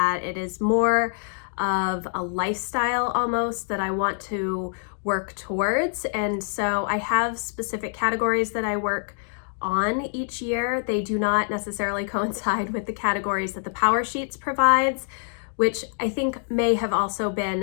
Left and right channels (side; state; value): right; silent; digital silence